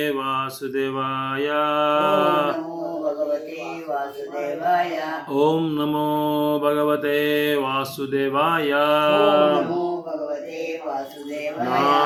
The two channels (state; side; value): identical; both; correlation 1.00